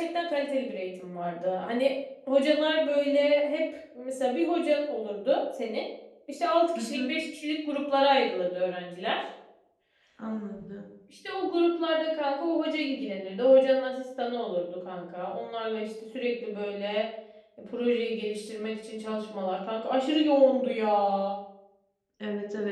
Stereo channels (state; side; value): identical; both; correlation 1.00